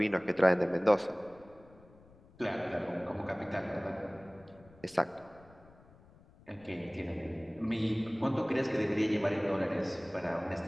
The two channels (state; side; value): noise; left; rumble, 25 dB below the sound